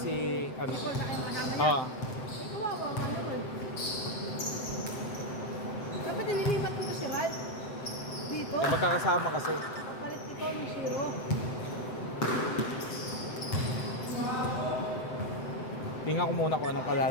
ano. Ikaw na kayo kasama niya. Oo. Ay, kawawa ka naman. Dapat nililipat mo si Rad. Dito. Eh, magkakasama kasi. Palit ikaw ng zero. Tingnan ko muna kung anong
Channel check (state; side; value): late; right; 7.8 ms